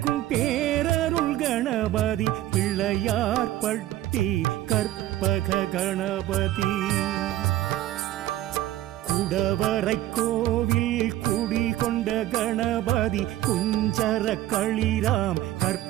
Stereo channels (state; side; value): quieter; left; 14.4 dB